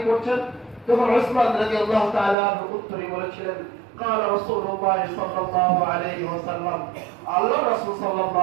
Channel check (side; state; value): left; drops out; at 2.4 s